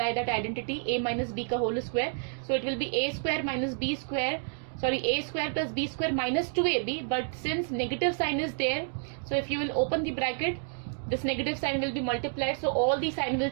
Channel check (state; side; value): silent; left; digital silence